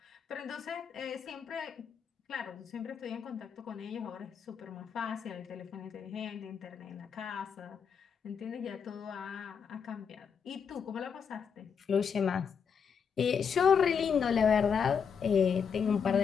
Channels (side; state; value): right; quieter; 6.7 dB